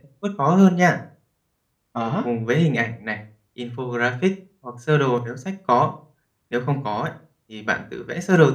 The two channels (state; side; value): identical; both; correlation 1.00